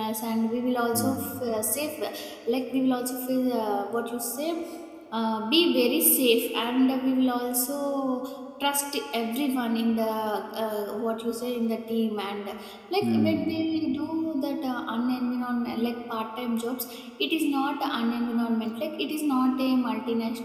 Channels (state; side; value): identical; both; correlation 1.00